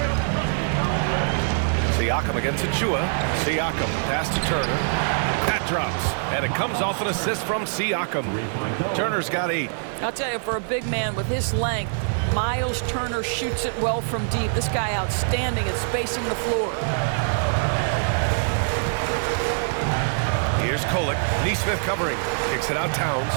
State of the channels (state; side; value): silent; left; 63 dB below the other